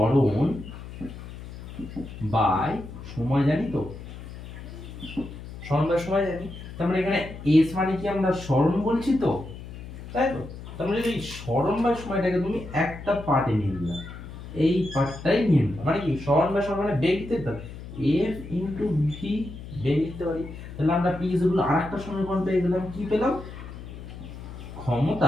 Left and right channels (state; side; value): noise; left; hum, 12 dB below the sound